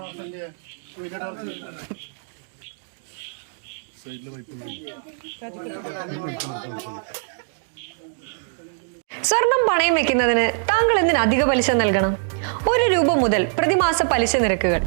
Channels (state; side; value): silent; left; digital silence